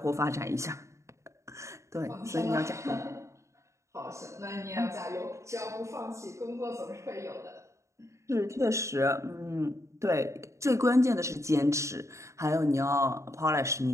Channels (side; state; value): left; late; 0.14 ms